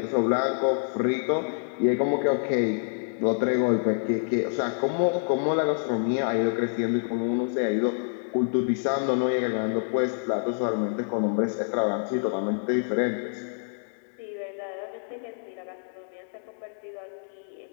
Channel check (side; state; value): right; silent; digital silence